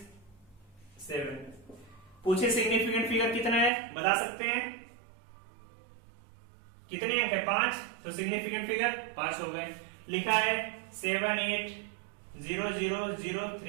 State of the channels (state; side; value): drops out; left; at 3.7 s